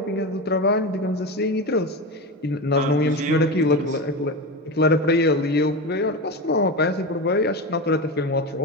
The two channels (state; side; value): normal; both; correlation 0.20